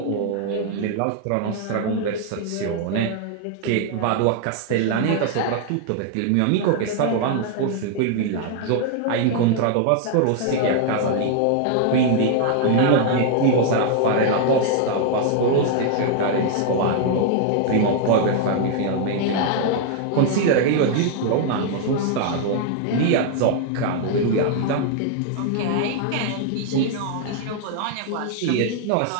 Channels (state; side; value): different; both; correlation 0.00